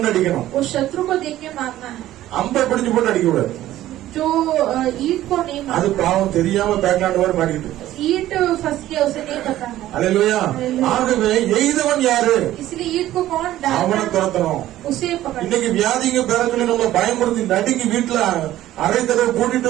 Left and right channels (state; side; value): quieter; left; 14.1 dB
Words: அடிக்கணும். उस शत्रु को देख के मारना है, அம்பை பிடிச்சு போட்டு அடிக்க கூடாது. जो ईट को नहीं அது मारना। பாவம் தெரியாம பேக்லாண்ட் மாதிரி மாறிட்டு. ईट फंस गया, उसे नहीं पता है, அல்லேலூயா. ஆகவே எய்தவன் யாரு? इसलिए ईट को कौन அவனை डालना, துரத்தணும். उसे पकड़ना। இன்னைக்கு வியாதிங்க பேர சொல்லி நம்ம பயமுறுத்தி நடுங்கி வீட்டுல அரை கதவை பூட்டிட்டு